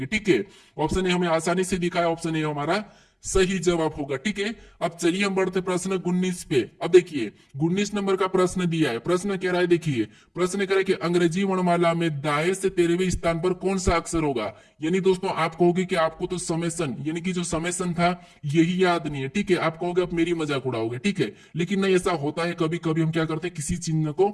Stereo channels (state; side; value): identical; both; correlation 1.00